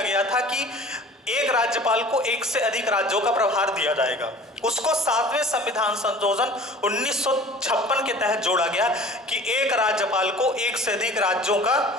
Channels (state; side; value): normal; both; correlation 0.44